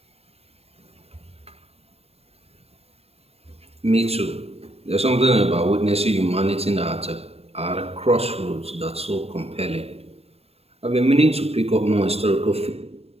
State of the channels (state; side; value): late; left; 0.29 ms